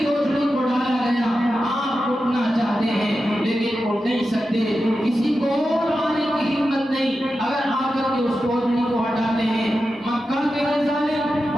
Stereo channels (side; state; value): both; normal; correlation 0.91